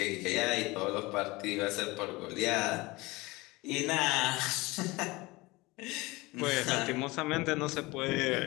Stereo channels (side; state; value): right; quieter; 22.4 dB